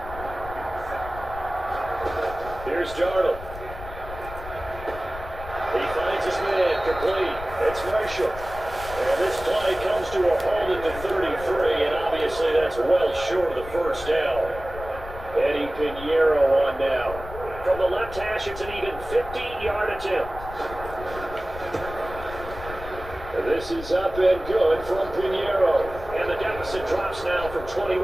Here's Darnold. He finds his man, complete. It's Marshall. And this play comes to a halt at the 33, and obviously that's well short of the first down. Eddie Pinheiro on now. From the left hash, it's an even 50-yard attempt. And this is up and good from Pinheiro. And the deficit drops now from 21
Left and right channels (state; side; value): noise; left; rumble, 12 dB below the sound